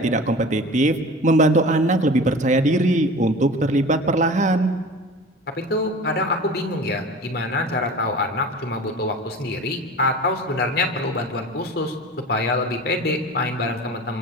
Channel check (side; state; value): both; normal; correlation 0.38